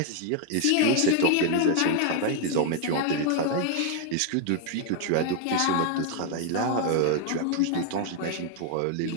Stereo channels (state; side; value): different; both; correlation 0.00